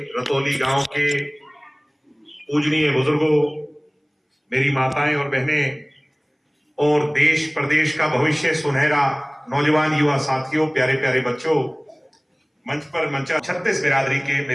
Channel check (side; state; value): both; identical; correlation 1.00